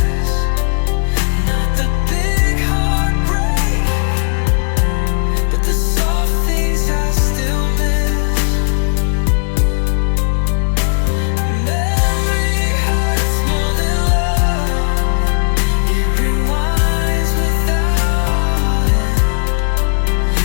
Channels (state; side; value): silent; right; digital silence